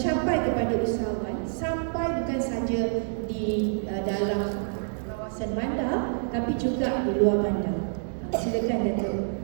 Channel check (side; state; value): left; silent; digital silence